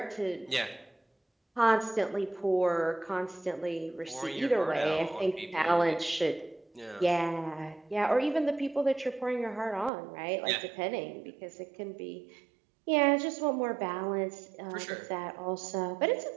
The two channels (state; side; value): drops out; left; at 9.9 s